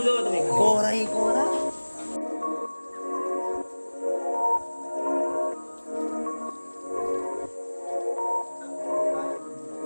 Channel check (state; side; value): inverted; both; correlation -1.00